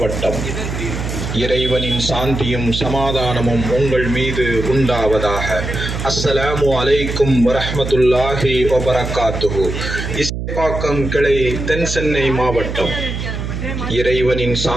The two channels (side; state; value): right; noise; hum, 5 dB below the sound